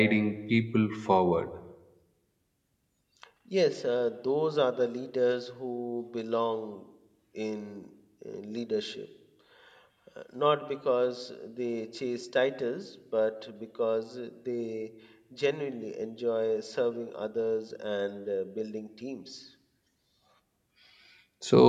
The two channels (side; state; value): both; identical; correlation 1.00